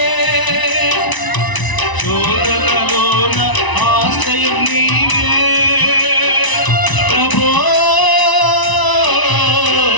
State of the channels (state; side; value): late; right; 1.0 ms